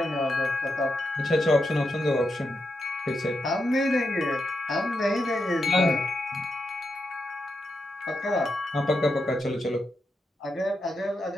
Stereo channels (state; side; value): normal; both; correlation 0.85